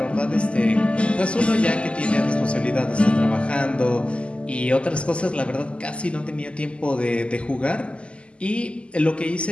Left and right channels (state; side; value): late; right; 0.055 ms